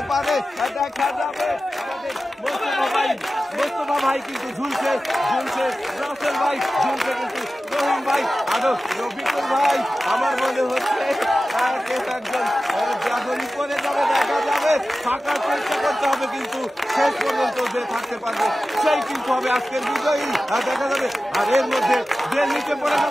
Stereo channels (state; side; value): normal; both; correlation 0.94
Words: পারে দেখা যাবে। আমাদের মোস্তফা ভাই কিন্তু ঝুলছে, রাসেল ভাই ঝুলছে, কিন্তু রহিম ভাই আরো রফিকুল ভাই আমার মনে হচ্ছে একজন যখনই করে যাবে দেখা যাবে। থাকার চেষ্টা করতে হবে, কিন্তু শেষ পর্যন্ত যে থাকতে পারবে সেই কিন্তু হবে আজকের বিজয়ী দেখা যাবে। আর এর মধ্যে যে নিচে পড়ে